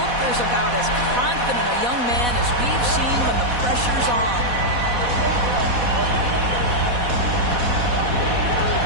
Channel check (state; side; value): late; left; 4.1 ms